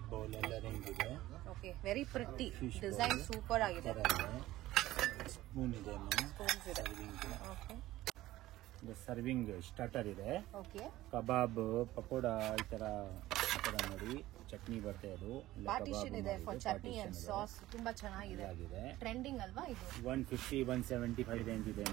bowl ಎಲ್ಲ ರೇಂಜ್ ಇದೆ. Okay, very pretty design, super ಆಗಿದೆ. ಸ್ಪೂನ್ ಇದೆ, ಸ್ಪೂನ್ಸ್ ಇದೆ. ಓಕೆ, ಸರ್ವಿಂಗ್ ಸ್ಟಾರ್ಟರ್ ಇದೆ. ಓಕೆ, ಕಬಾಬ್, ಪಕೋಡ, ಈ ತರ ನೋಡಿ. ಚಟ್ನಿ ಬರುತ್ತೆ, ಅದು ಪಾರ್ಟಿಷನ್ ಇದೆ ಫಾರ್ ಚಟ್ನಿ ಅಂಡ್ ಸಾಸ್. ತುಂಬಾ ಚೆನ್ನಾಗಿದೆ. ಟ್ರೆಂಡಿಂಗ್ ಅಲ್ವಾ ಇದು? 150, 175 ರೇಂಜ್ ಇದೆ.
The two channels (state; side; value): quieter; left; 16.1 dB